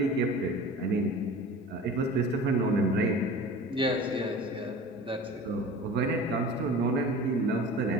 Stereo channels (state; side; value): normal; both; correlation 0.38